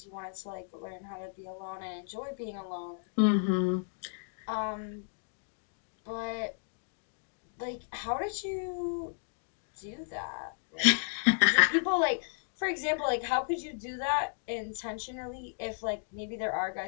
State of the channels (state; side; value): silent; right; digital silence